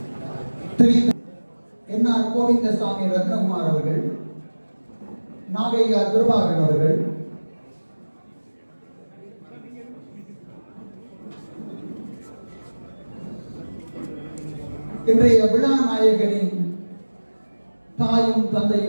என்ஆர் கோவிந்தசாமி ரத்னகுமார் அவர்கள், நாகையா துர்பாகன் அவர்கள், இன்றைய விழா நாயகனின் தாயும்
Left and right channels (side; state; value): both; inverted; correlation -1.00